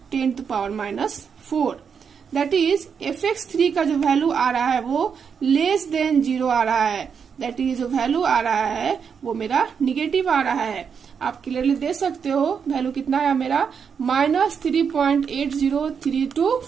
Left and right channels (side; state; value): left; quieter; 6.7 dB